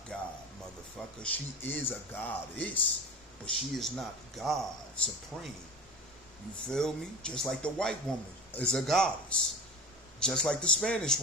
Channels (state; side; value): normal; both; correlation 0.33